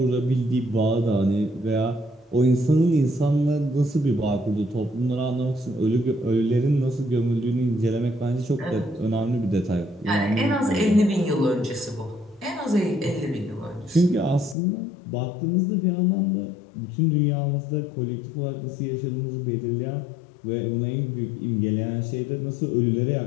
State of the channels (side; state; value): right; drops out; at 14.6 s